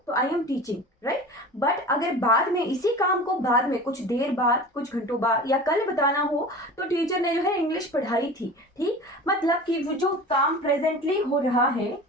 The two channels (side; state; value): both; normal; correlation 0.36